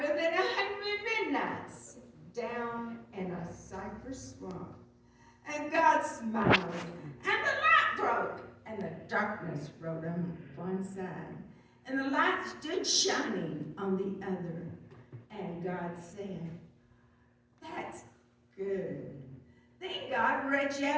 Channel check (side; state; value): both; identical; correlation 1.00